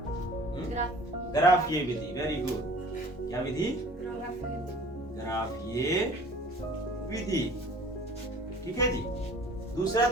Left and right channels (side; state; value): both; normal; correlation 0.48